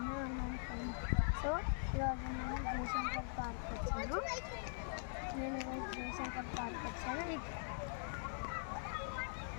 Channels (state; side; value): silent; right; digital silence